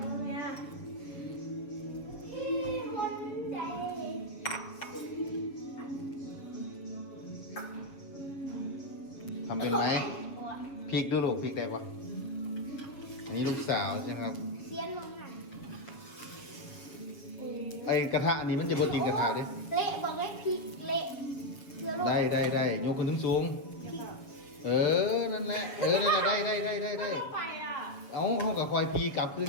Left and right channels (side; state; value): right; late; 7.5 ms